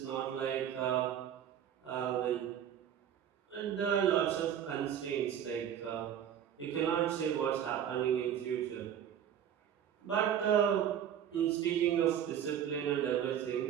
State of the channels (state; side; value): quieter; left; 9.5 dB